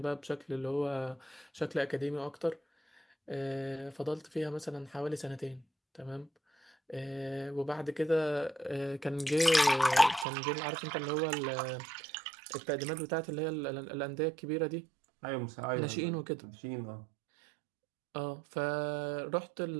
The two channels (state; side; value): drops out; left; at 10.2 s